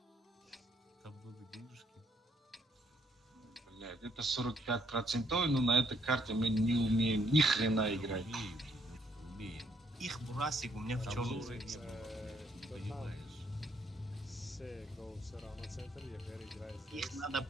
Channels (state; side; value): normal; both; correlation 0.70